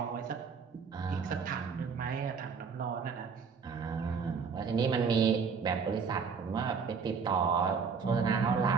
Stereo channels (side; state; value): left; quieter; 5.8 dB